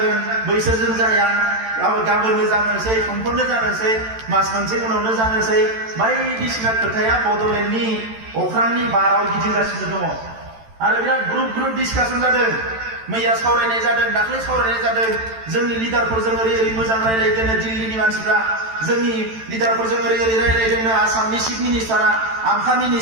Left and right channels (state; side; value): late; left; 13 ms